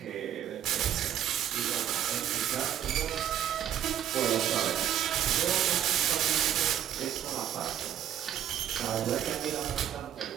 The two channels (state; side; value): quieter; left; 10.5 dB